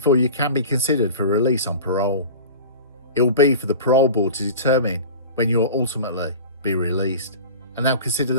you can be considered for release on parole. It will be for the parole board to determine when you will ultimately be released, and they'll consider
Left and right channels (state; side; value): inverted; both; correlation -0.36